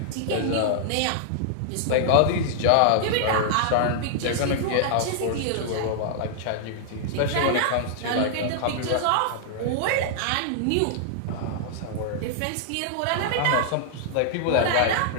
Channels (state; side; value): different; both; correlation -0.01